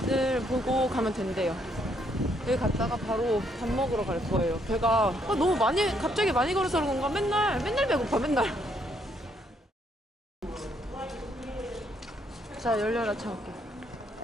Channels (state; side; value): normal; both; correlation 0.71